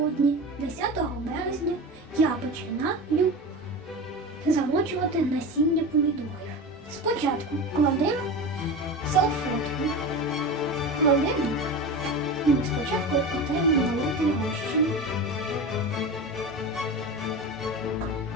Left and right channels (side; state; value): both; normal; correlation 0.27